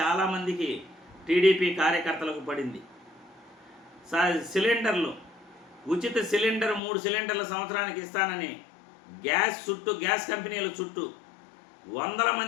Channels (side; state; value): right; drops out; at 6.8 s